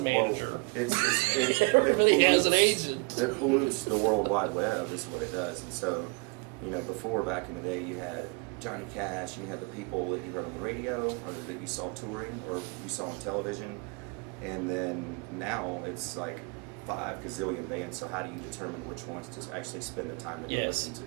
manager. Everybody has an agent. It pollutes the World Wide Web, is what it does. And so, before, back in the day, you had Johnny Cash, you had the people that you heard on the radio or that you saw touring or you saw on television, and then now it's like 5 gazillion bands. So how do you determine which ones to actually spend the time to go listen to?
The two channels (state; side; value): quieter; left; 30.1 dB